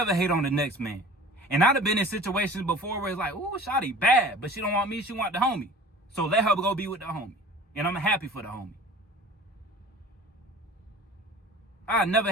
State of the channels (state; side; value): normal; both; correlation 0.42